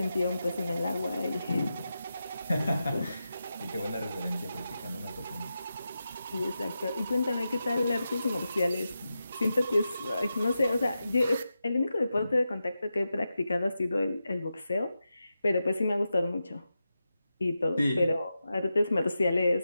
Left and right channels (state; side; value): inverted; both; correlation -0.90